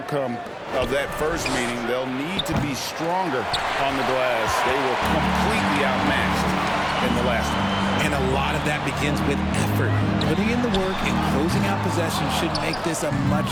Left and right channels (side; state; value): both; identical; correlation 1.00